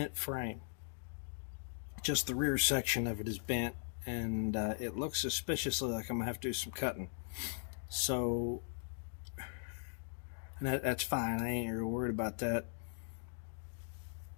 frame. Just the rear section of it is bent, and it looks suspiciously like I'm gonna have to do some cutting. So, and that's fine. I ain't real worried about that.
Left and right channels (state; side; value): silent; right; digital silence